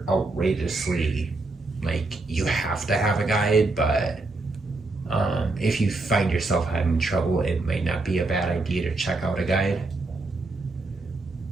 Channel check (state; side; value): quieter; left; 3.2 dB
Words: outrageously, like, you have to have a guide, but if you find yourself having trouble, it might not be a bad idea to check out a guide.